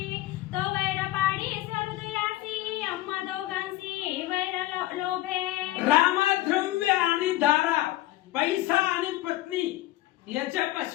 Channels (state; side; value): quieter; right; 16.6 dB